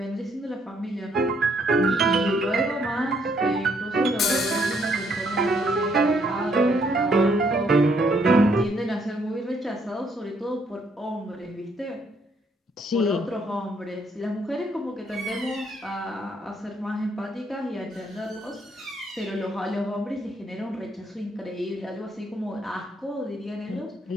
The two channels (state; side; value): normal; both; correlation 0.70